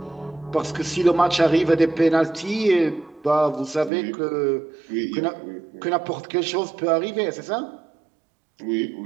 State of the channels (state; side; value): drops out; left; at 3.9 s